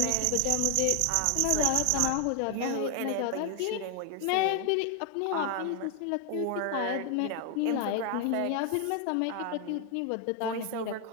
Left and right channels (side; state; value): both; different; correlation 0.01